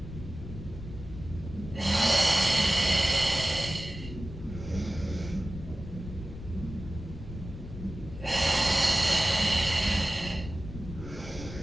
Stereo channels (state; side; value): noise; left; rumble, 11 dB below the sound